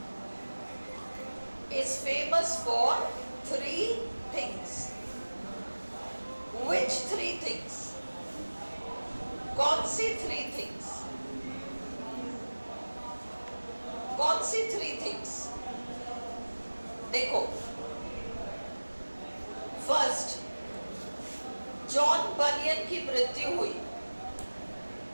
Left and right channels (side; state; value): both; inverted; correlation -1.00